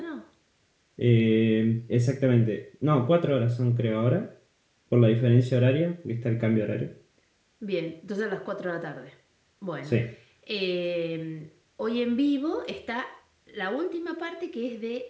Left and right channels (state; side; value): identical; both; correlation 1.00